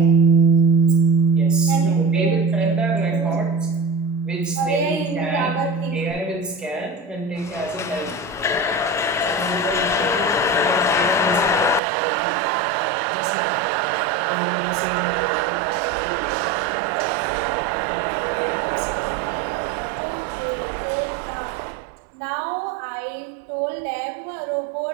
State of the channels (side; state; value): left; drops out; at 11.8 s